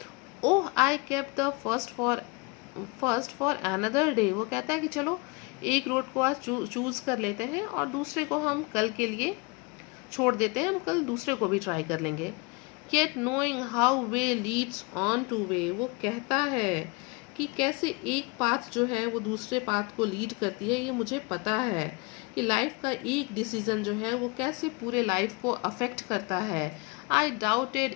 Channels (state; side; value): quieter; right; 27.7 dB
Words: oh I kept the first for another day. वो कहता है कि चलो एक रोड को आज चूज़ कर लेते हैं और दूसरे को हम कल के लिए छोड़ देते हैं, हम कल दूसरे को भी ट्राई कर लेंगे. Yet knowing how way leads on to way. वो कहता है कि कैसे एक पाथ जो है वो दूसरे पाथ को लीड करती है, ये मुझे पता है कि लाइफ का एक डिसीजन जो है वो कैसे पूरे लाइफ को अफेक्ट करता है. आई doubted